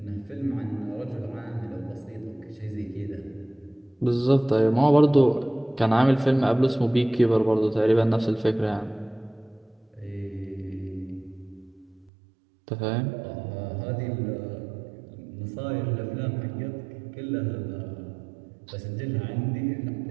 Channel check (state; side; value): drops out; left; at 12.1 s